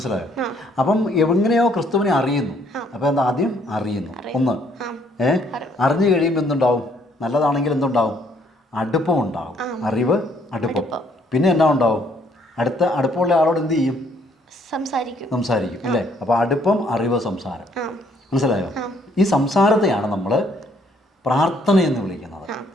അപ്പം എങ്ങനെയോ ക്രിസ്തുവിനെ അറിയുന്നു. അപ്പോൾ എന്താ? ആദ്യം അറിയുന്നു. ഒന്ന് അറിഞ്ഞു കഴിയുമ്പോൾ എന്തുണ്ടാവും? നല്ലതാണെങ്കിൽ എന്തുണ്ടാവും? അടുപ്പം ഉണ്ടാവും. അറിവ്, അടുപ്പം. പിന്നെ എന്നാ ഉണ്ടാവും? അടുപ്പമുള്ള ആളോട് എന്ത് ചെയ്യും? സംസാരിക്കും അല്ലേ? അപ്പോൾ അടുപ്പം, അറിവ്, സംസാരം. മനസ്സിലായോ? ഈ സംസാരത്തെയാണ് നമ്മൾ പ്രാർത്ഥന എന്ന് വിളിക്കുന്നത്,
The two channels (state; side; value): normal; both; correlation 0.66